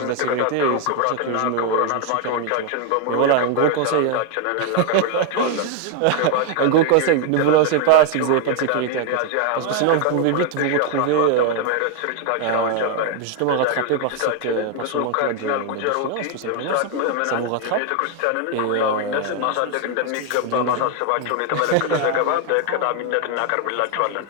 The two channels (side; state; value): both; different; correlation 0.00